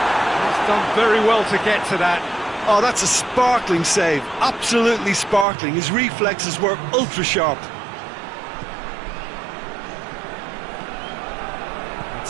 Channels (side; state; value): left; drops out; at 5.5 s